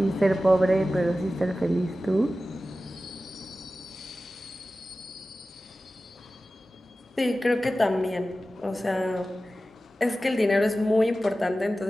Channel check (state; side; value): normal; both; correlation 0.95